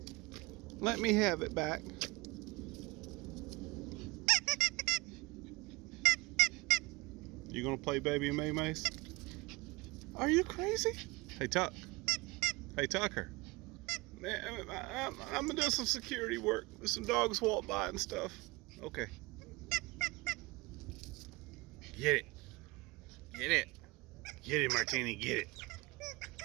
Let me have it back. You gonna play baby and MaeMae? Are you crazy? Hey Tuck. Hey Tucker. Man, I'm gonna do some security work. Some dogs walk by and stuff. Okay. Get it. Get it. Get it, Martini. Get it.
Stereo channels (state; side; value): quieter; left; 24.0 dB